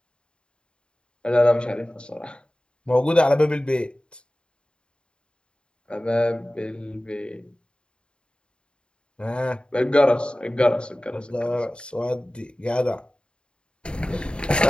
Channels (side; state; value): right; late; 0.052 ms